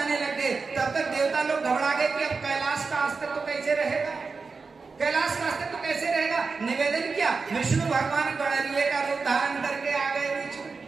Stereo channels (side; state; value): left; quieter; 4.5 dB